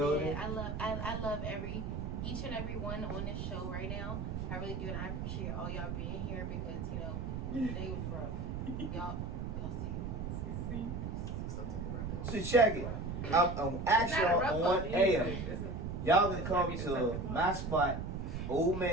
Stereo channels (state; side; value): noise; right; rumble, 4 dB below the sound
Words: man. I love each and every one on this show right now. I really do, and I appreciate all y'all being here because today was rough. Y'all see. Something to wrap up. So check it. I'm actually on air. Y'all gonna come to my spot, Old